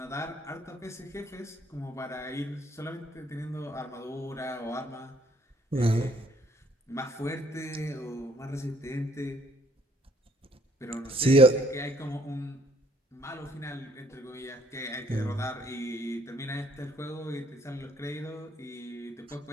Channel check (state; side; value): normal; both; correlation 0.64